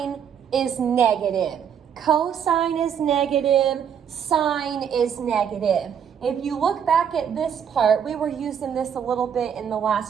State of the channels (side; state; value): left; quieter; 8.2 dB